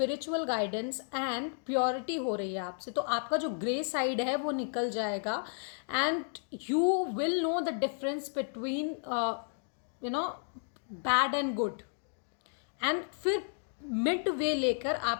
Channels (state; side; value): silent; right; digital silence